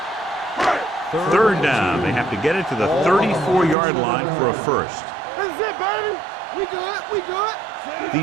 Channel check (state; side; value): drops out; left; at 3.8 s